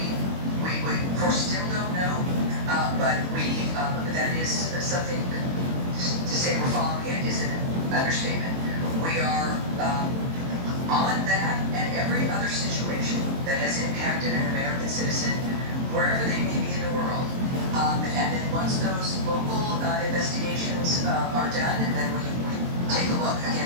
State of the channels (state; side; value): late; left; 22 ms